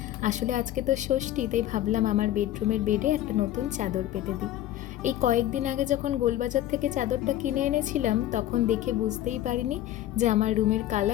আসলে আজকে তো ষষ্ঠী, তাই ভাবলাম আমার বেডরুমের বেডে একটা নতুন চাদর পেতে দিই। এই কয়েকদিন আগে যখন গোলবাজার থেকে চাদরটা কিনে এনেছিলাম, তখন দেখে বুঝতেই পারিনি যে আমার রুমের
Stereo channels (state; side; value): quieter; right; 13.2 dB